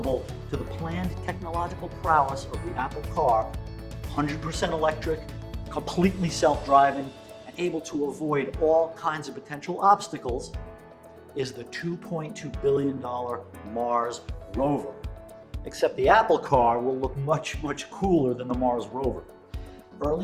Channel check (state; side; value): identical; both; correlation 1.00